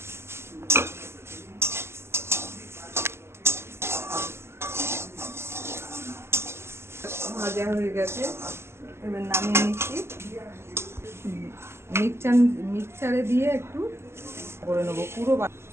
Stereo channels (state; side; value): late; left; 0.12 ms